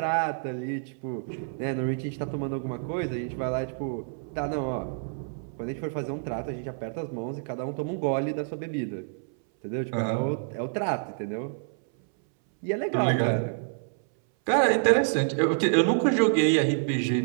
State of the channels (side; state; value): left; silent; 59 dB below the other